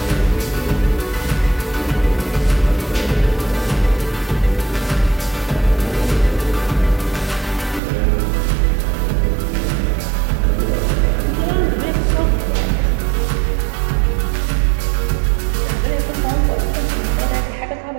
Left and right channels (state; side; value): drops out; left; at 7.8 s